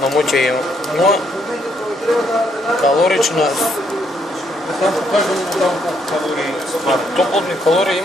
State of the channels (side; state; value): both; normal; correlation 0.73